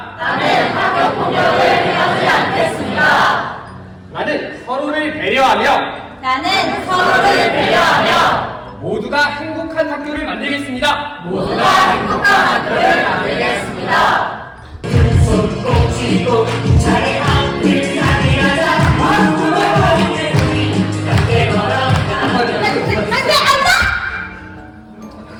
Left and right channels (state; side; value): identical; both; correlation 1.00